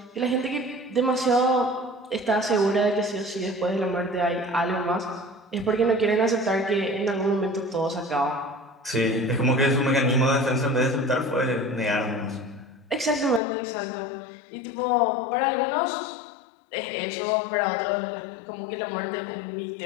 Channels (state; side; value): drops out; right; at 13.4 s